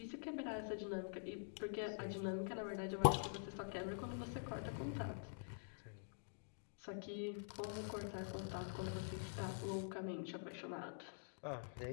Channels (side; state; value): right; silent; digital silence